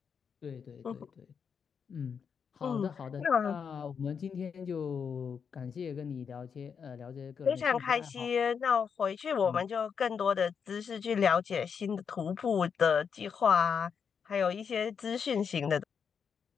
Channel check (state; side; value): quieter; right; 6.6 dB